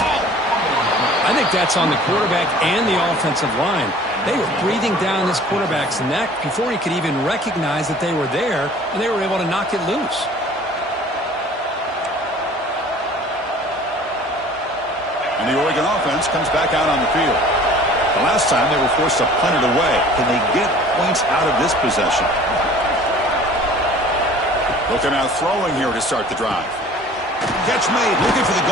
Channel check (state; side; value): normal; both; correlation 0.48